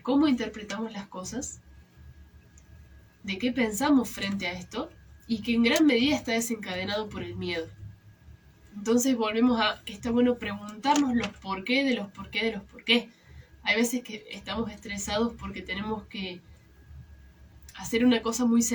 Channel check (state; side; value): identical; both; correlation 1.00